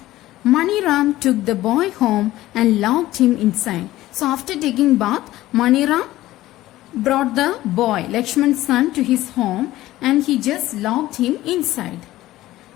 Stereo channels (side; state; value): right; quieter; 15.9 dB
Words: Maniram took the boy home and locked him inside. So after taking bath, Maniram brought the boy, Lakshman's son, to his home and he just locked him inside.